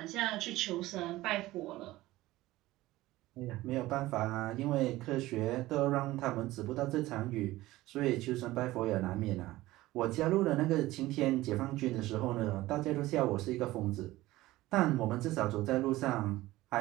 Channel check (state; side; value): quieter; left; 17.5 dB